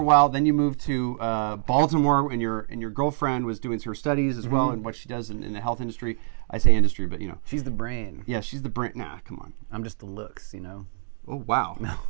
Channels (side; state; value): left; silent; digital silence